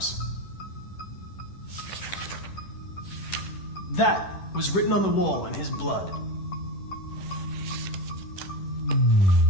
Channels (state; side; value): late; right; 10 ms